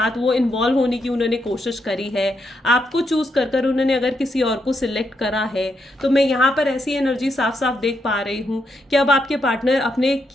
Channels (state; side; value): normal; both; correlation 0.80